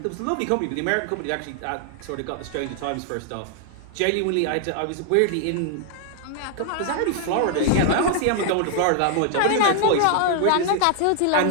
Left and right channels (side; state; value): both; different; correlation 0.00